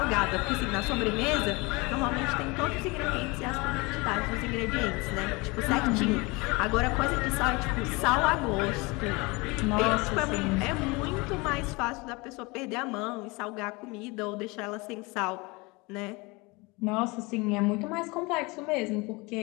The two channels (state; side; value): quieter; right; 25.7 dB